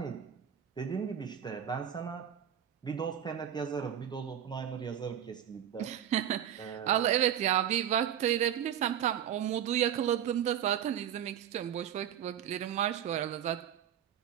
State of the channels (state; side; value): quieter; left; 9.8 dB